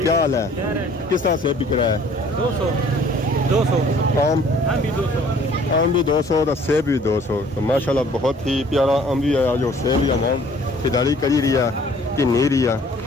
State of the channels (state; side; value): normal; both; correlation 0.55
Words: हाल है किस तरह से बिक रहा है 200 आम भी 200 तो सेब भी 200 तो माशाल्लाह बहुत ही प्यारा आम भी है जो सेब भी आवाम खरीदारी करी रही है कि नहीं रही है